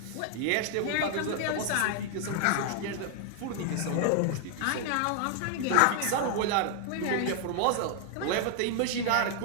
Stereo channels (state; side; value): different; both; correlation 0.00